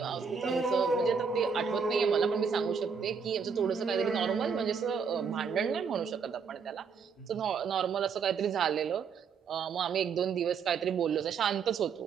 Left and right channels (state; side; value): quieter; left; 6.0 dB